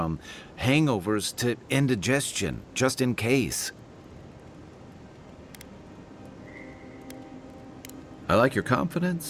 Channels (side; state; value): both; identical; correlation 1.00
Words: hangovers to indigestion, just in case. I like your